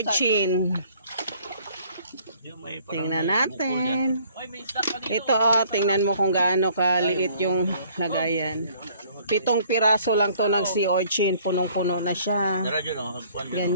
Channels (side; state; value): both; inverted; correlation -0.58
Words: Yung may parang Tingnan may bukol dyan. natin. Oy, may stock ka dito. Ito tingnan mo kung gaano kaliit yung lagayan. 7 piraso lang to ng sea urchin. Punong-puno na siya. Tara dyan o. Hagpuan dyan.